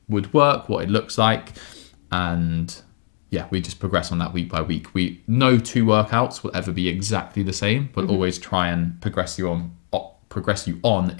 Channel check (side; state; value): right; silent; digital silence